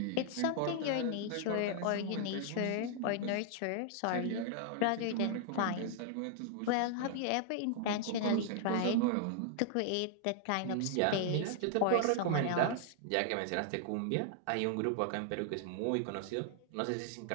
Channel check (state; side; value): different; both; correlation 0.00